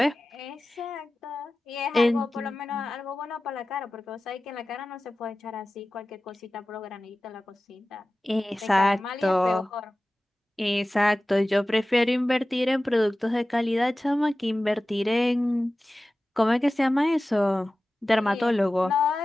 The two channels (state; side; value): normal; both; correlation 0.96